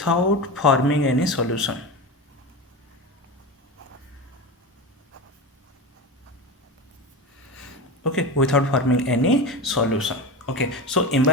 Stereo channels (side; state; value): both; normal; correlation 0.23